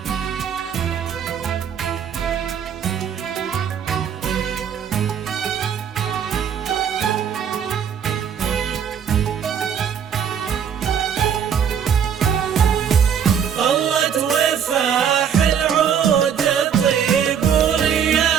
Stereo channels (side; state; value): left; quieter; 8.0 dB